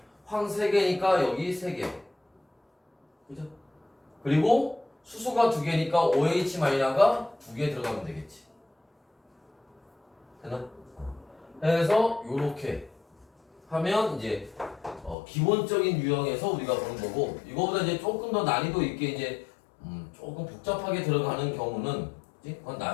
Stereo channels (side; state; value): right; drops out; at 15.2 s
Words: 황 3개니까 여기 3개. 그죠? 그리고 수소가 2개니까 OH-가 2개 들어가면 되겠지. 되나? 해서 요렇게 하면 이제 기본적인 유형에서 우리가 보는 거고, 이거보다 이제 조금 더 난이도 있게 이제 조금 복잡하게 들어가는 경우는 그건